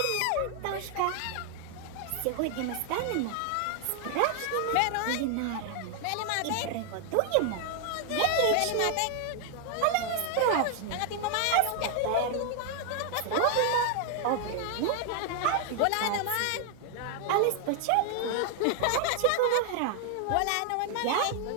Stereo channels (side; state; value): both; different; correlation 0.00